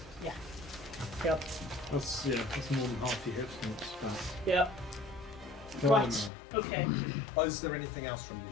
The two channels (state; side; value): drops out; right; at 6.3 s